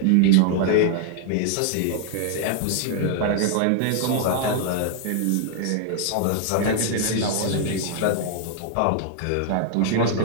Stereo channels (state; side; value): different; both; correlation -0.01